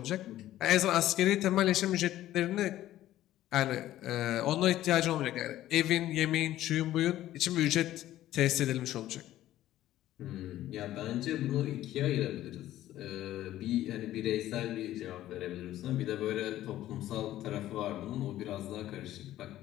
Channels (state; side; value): quieter; right; 13.8 dB